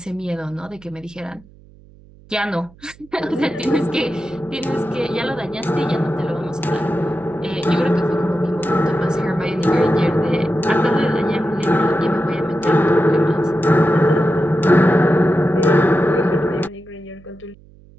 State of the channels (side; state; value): right; noise; hum, 25 dB below the sound